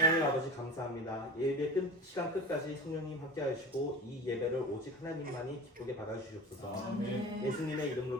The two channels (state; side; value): normal; both; correlation 0.34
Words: 아버지 감사합니다. 예배 시간 끝까지 성령님 함께 하시고 이 예배를 오직 하나님만이 기쁘게 받아주시옵소서. 예수님의